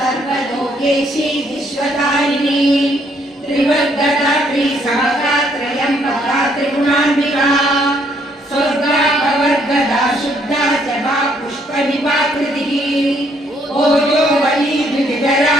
विश्वतारिणी शब्दा जपा पुष्प विपाकृतिः ओजो वली द्विविधरा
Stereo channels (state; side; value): normal; both; correlation 0.69